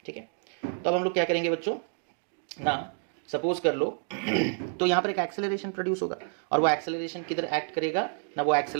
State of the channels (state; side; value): silent; left; 59 dB below the other